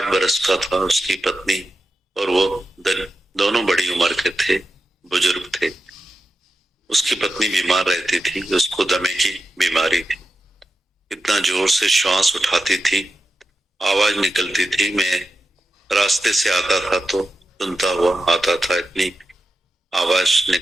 बरस का था, उसकी पत्नी और वो दोनों बड़ी उम्र के थे, बुजुर्ग थे। उसकी पत्नी बीमार रहती थी, उसको दमे की बीमारी थी। इतना जोर से श्वास उठाती थी, आवाज निकलती थी। मैं रास्ते से आता था तो सुनता हुआ आता था, इतनी आवाज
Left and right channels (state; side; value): normal; both; correlation 0.90